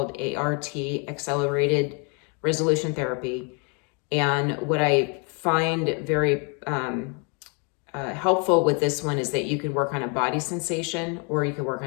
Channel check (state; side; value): quieter; right; 36.0 dB